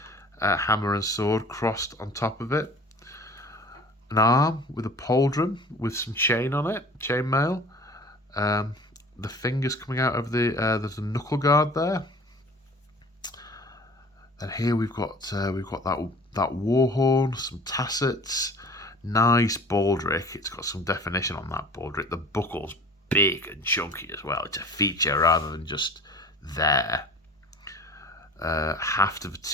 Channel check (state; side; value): normal; both; correlation 0.44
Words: a hammer and sword crossed on top of it, an arm with a pauldron with some chain on it, chainmail. The fingers coming out of there's a knuckle guard there. And here we've got that war horn, some tassets, nice baldric. It's got some definition on that baldric. The buckle's big and chunky as well. It's a feature rather than just there. Haft of a